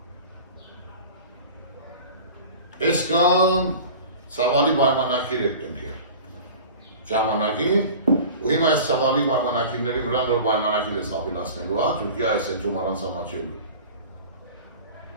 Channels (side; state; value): both; inverted; correlation -0.39